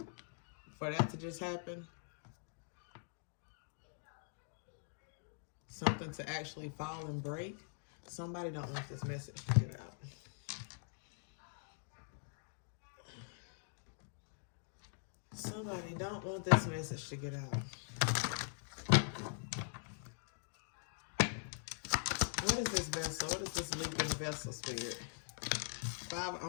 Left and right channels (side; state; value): right; silent; digital silence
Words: For that to just happen, something to actually fall and break, somebody don't want this message to get out. Somebody don't want this message to get out. What is this vessel? What is this leaking vessel, Spirit?